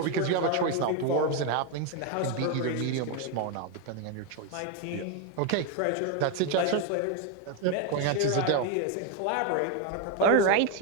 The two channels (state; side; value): different; both; correlation 0.02